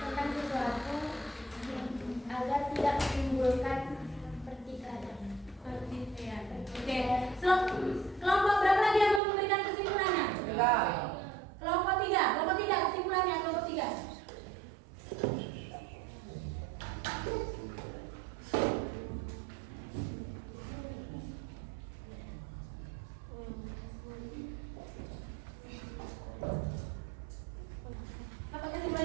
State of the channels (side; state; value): left; drops out; at 9.2 s